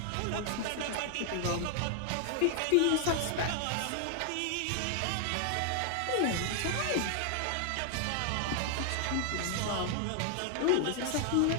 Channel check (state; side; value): different; both; correlation 0.00